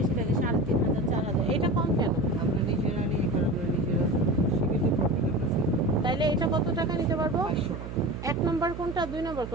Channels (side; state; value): right; noise; hum, 9 dB below the sound